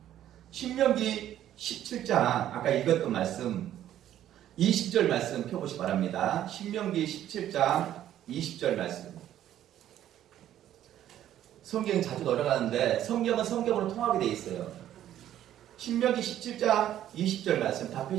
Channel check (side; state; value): left; quieter; 11.7 dB